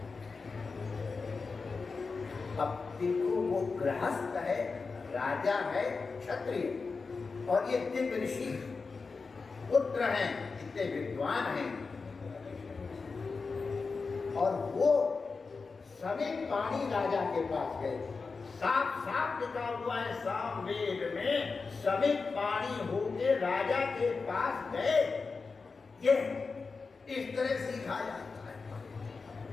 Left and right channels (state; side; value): quieter; right; 4.5 dB